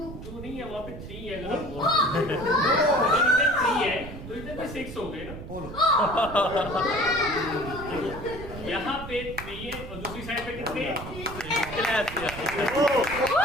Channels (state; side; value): noise; right; rumble, 11 dB below the sound